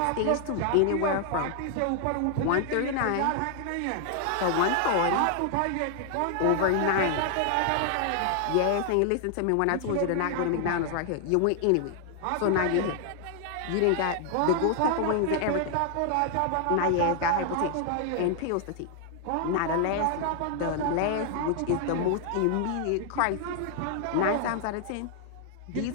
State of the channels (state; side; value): different; both; correlation 0.00